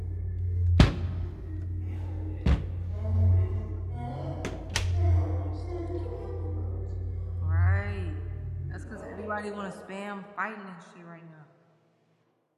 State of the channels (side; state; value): both; identical; correlation 1.00